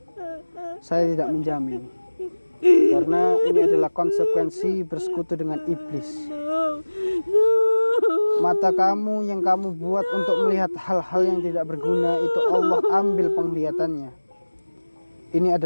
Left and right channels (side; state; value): both; inverted; correlation -1.00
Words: saya tidak menjamin, karena ini adalah konsekuensi bersekutu dengan iblis. Mata kamu yang kamu buat untuk melihat hal-hal yang tidak berguna itu Allah ambil penglihatannya. Ini